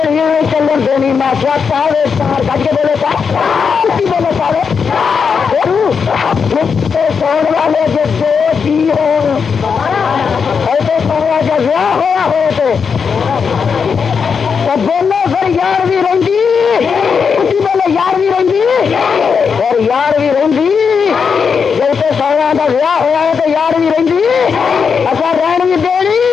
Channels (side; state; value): right; quieter; 6.0 dB